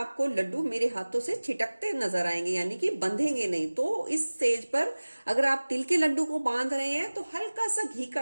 लड्डू मेरे हाथों से छिटकते नजर आएंगे, यानी कि बंधेंगे नहीं। तो इस स्टेज पर अगर आप तिल के लड्डू को बांध रहे हैं तो हल्का सा घी का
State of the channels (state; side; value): inverted; both; correlation -1.00